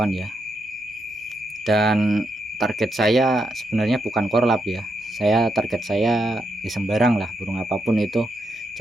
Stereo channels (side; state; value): both; normal; correlation 0.82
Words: ya. Dan target saya sebenarnya bukan korlap ya, target saya ya sembarang lah, burung apapun itu,